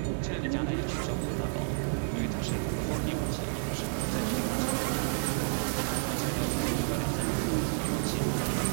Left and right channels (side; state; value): left; silent; 57 dB below the other